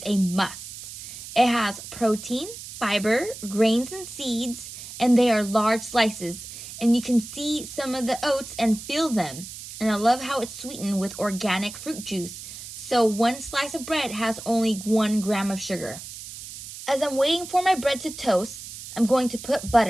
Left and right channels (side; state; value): right; noise; hiss, 12 dB below the sound